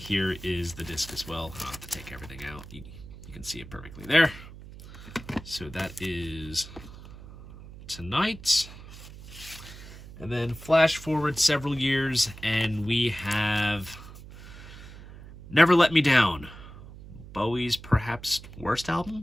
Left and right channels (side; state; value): right; noise; hum, 16 dB below the sound